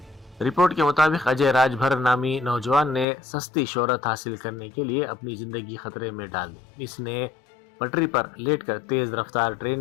رپورٹ کے مطابق اجے راج بھر نامی نوجوان نے سستی شہرت حاصل کرنے کے لیے اپنی زندگی خطرے میں ڈال دی۔ اس نے پٹری پر لیٹ کر تیز رفتار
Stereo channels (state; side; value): drops out; right; at 3.1 s